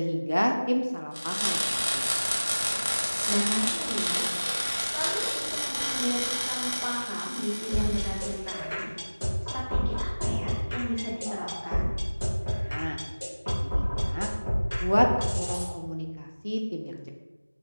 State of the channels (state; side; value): inverted; both; correlation -1.00